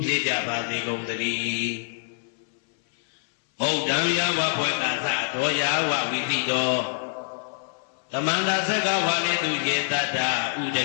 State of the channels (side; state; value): right; silent; 61 dB below the other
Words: ဖြစ်ကြပါစေကုန်သတည်းဩဒံယဝဘွယ်ကသတော်ယာဝဝိသိတော်သမန္တာသက္ကဝါလေသူယေတ္တဥဒ